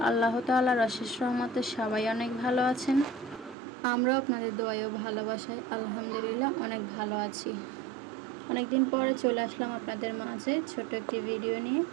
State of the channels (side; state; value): left; drops out; at 3.6 s